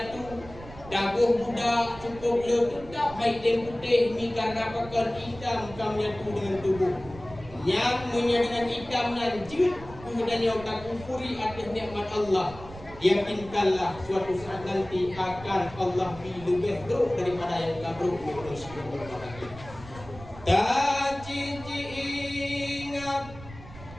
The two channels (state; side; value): noise; right; rumble, 16 dB below the sound